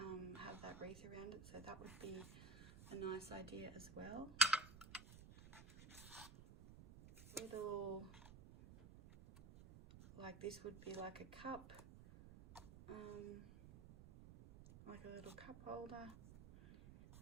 have that wreath around it. So that would be a nice idea as well. Little, like this would be like a cup, like a little cup holder.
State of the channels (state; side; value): noise; right; rumble, 14 dB below the sound